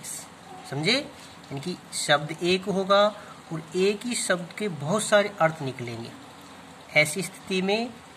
समझे? इनकी शब्द एक होगा और एक ही शब्द के बहुत सारे अर्थ निकलेंगे। ऐसी स्थिति में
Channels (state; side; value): identical; both; correlation 1.00